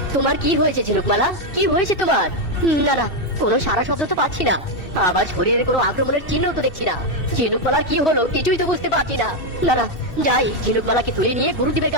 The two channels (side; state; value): right; late; 2.7 ms